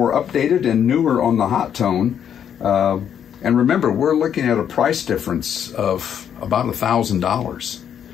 updated and newer on the hot tone. And remember, we're looking at a price difference of about $1,000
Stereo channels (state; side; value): quieter; right; 8.8 dB